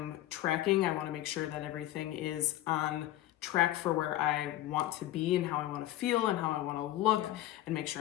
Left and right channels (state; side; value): quieter; right; 14.6 dB